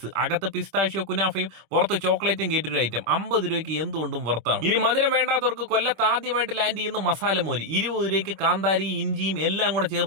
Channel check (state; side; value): late; left; 26 ms